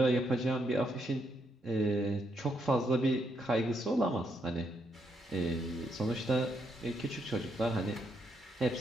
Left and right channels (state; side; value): normal; both; correlation 0.77